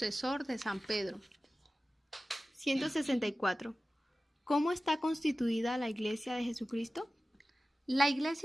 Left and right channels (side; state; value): both; normal; correlation 0.95